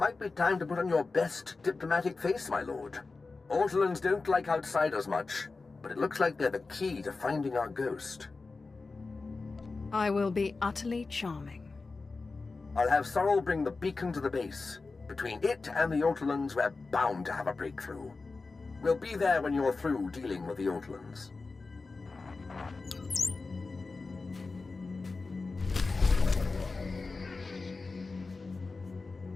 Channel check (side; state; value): right; quieter; 3.9 dB